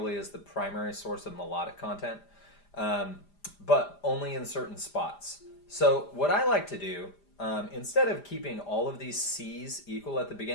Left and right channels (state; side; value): late; right; 5.0 ms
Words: is the primary source of melodic content, but only in certain spots. So what I like to do, instead of keeping all of these C's equal at the